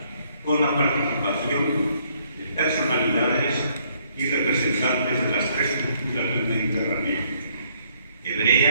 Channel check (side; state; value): both; inverted; correlation -0.68